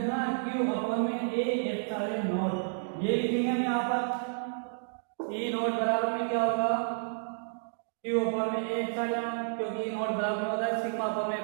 q अपॉन में a एप्सिलॉन नॉट ये लिखेंगे हम यहाँ पर ई नॉट बराबर में क्या होगा q अपॉन में a एप्सिलॉन, क्योंकि ई नॉट बराबर में होता है सिग्मा अपॉन में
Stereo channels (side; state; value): left; silent; digital silence